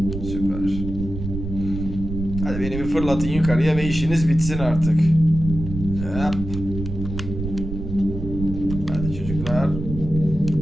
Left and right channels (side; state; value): right; noise; rumble, 7 dB below the sound